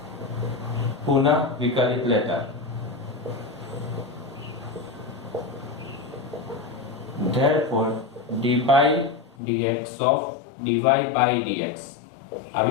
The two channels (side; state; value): right; drops out; at 9.3 s